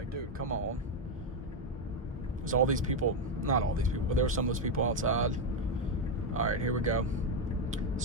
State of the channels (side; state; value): both; normal; correlation 0.06